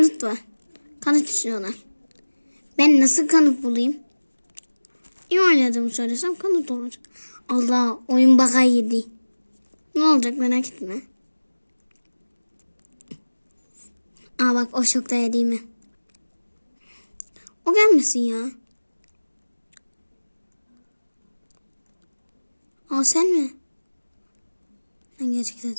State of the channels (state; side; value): inverted; both; correlation -1.00